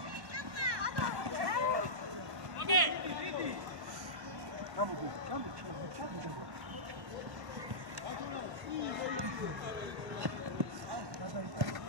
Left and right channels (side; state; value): left; late; 1.1 ms